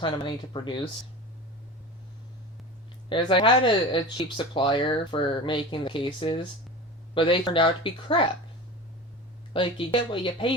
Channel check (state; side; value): normal; both; correlation 0.32